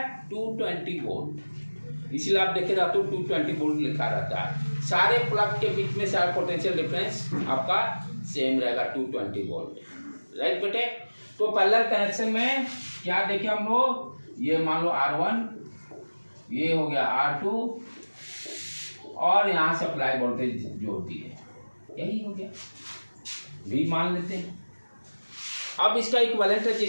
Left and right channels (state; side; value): inverted; both; correlation -1.00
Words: 220 वोल्ट, इसलिए आप देखे रहते हो 220 वोल्ट लिखा रहता है। सारे प्लग के बीच में सारा पोटेंशियल डिफरेंस आपका सेम रहेगा 220 वोल्ट, राइट बेटे। तो पैरेलल कनेक्शन में क्या देखे हम लोग, ये मान लो R1, ये हो गया R2 और यहाँ सप्लाई वोल्टेज जोड़ दिए, यही हो गया, भी मान लेते हैं। अब इसका इक्विवेलेंट